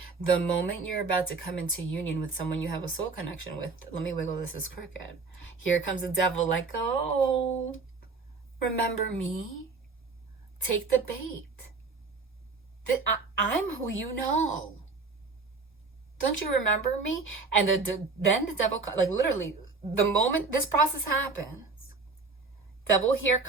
The moment you're about to come into union with someone you have a soul connection with, let me wiggle this as crooked. Here comes the devil like, oh, remember me? Take the bait. I'm who you know. Don't you remember me? And then the devil, like literally, the moment this process happens, devil here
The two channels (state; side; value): quieter; left; 4.2 dB